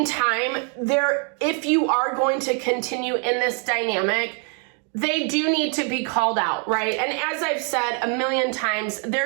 time, if you are going to continue in this dynamic, they do need to be called out, right? And as I've said a million times,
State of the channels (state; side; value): quieter; left; 40.0 dB